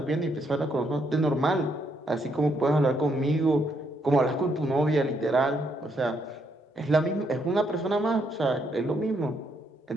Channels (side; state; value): both; normal; correlation 0.75